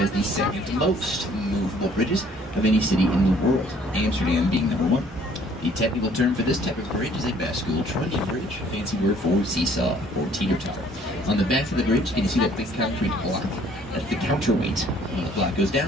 the second most movable bridges of any city in the world, Amsterdam being number 1. The technical term for this type of bridge is a bascule trunnion bridge, a fancy word for seesaw or teeter-totter. On the back of the bridge, can you see that big concrete block? That's the counterweight. When the block goes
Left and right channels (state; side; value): normal; both; correlation 0.59